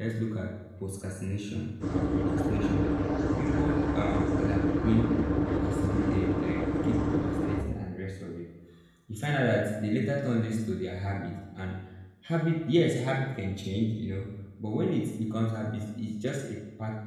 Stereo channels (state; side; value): identical; both; correlation 1.00